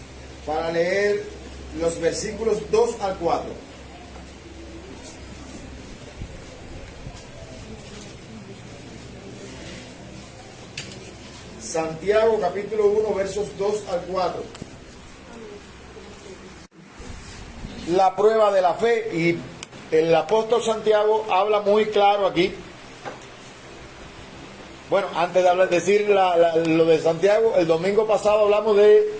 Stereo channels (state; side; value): identical; both; correlation 1.00